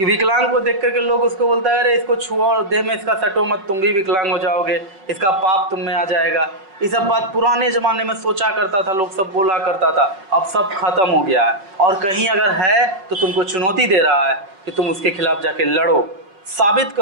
विकलांग को देख करके लोग उसको बोलता है अरे इसको छुओ, देह में इसका सटो मत, तुम भी विकलांग हो जाओगे, इसका पाप तुम में आ जाएगा, ये सब बात पुराने ज़माने में सोचा करता था, लोग सब बोला करता था। अब सब खत्म हो गया है। और कहीं अगर है तो तुमको चुनौती दे रहा है कि तुम उसके खिलाफ जाके लड़ो, साबित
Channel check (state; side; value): late; left; 5.3 ms